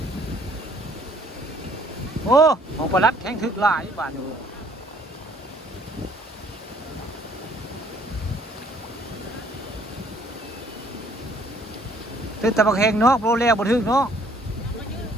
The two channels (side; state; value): both; normal; correlation 0.61